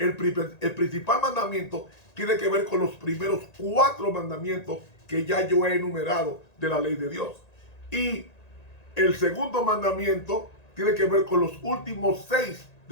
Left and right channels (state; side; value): late; right; 1.9 ms